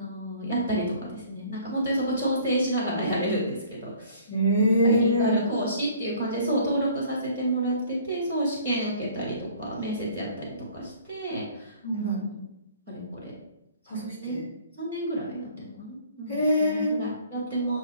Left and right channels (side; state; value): both; inverted; correlation -0.53